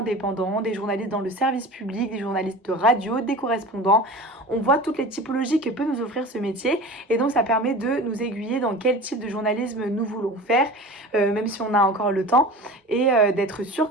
des journalistes dans le service public, des journalistes de radio, des correspondants. On voit toutes les typologies que peut nous offrir ce métier et donc ça permet de nous aiguiller dans quel type de journalisme nous voulons faire, même si on a encore le temps, et d'être sûr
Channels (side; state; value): both; normal; correlation 0.36